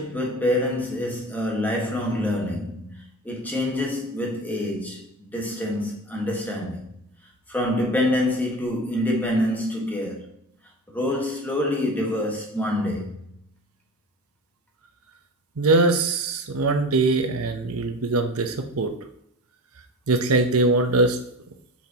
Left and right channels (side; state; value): both; normal; correlation 0.31